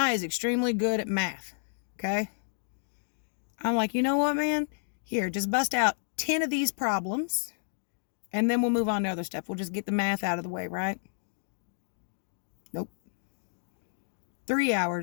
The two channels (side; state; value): right; silent; digital silence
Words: is extremely good at math, okay? I'm like, you know what, man? Here, just bust out 10 of these problems, and then we'll move on to other stuff. We'll just get the math out of the way, right? Nope. 3